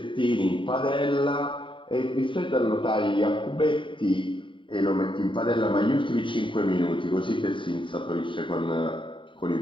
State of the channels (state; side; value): late; right; 0.24 ms